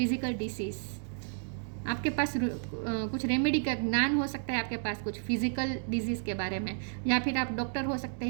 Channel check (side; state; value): left; silent; digital silence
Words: डिसीज, आपके पास कुछ रेमेडी का ज्ञान हो सकता है, आपके पास कुछ फिजिकल डिजीज़ के बारे में, या फिर आप डॉक्टर हो सकते